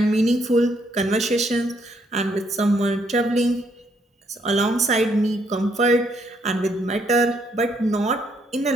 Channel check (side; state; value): both; normal; correlation 0.71